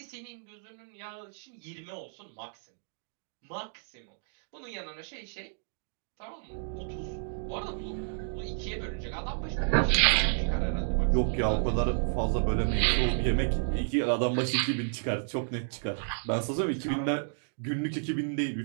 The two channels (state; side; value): silent; left; digital silence